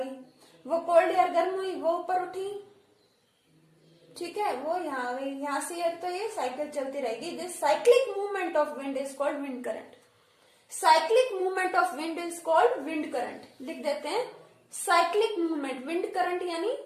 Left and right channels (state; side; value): identical; both; correlation 1.00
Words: वो कोल्ड एयर गर्म हुई वो ऊपर उठी, ठीक है, वो यहाँ आ गई, यहाँ से एयर, तो ये साइकिल चलती रहेगी। This cyclic movement of wind is called wind current. Cyclic movement of wind is called wind current. लिख देते हैं साइक्लिक मूवमेंट, विंड करंट यानी